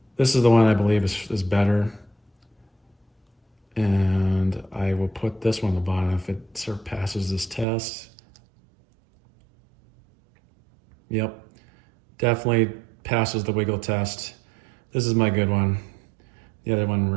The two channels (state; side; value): drops out; left; at 7.7 s